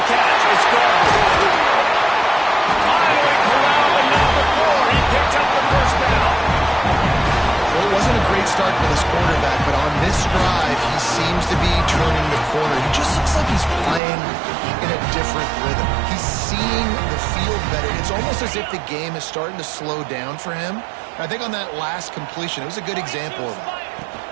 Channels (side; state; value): left; drops out; at 14.0 s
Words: catch. It's gone. Finally corralled at number 4. He picks up the first down. Well, it wasn't a great start for this quarterback, but on this drive, he seems to be turning the corner. He just looks like he's playing in a different rhythm. He's seeing the field better. It's almost as if the game is starting to slow down for him. I think on that last completion, it was a good example of that.